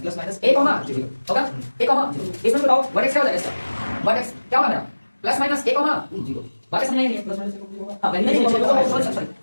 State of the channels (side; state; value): both; inverted; correlation -1.00